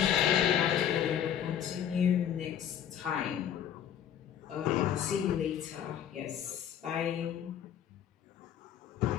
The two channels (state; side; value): quieter; right; 9.7 dB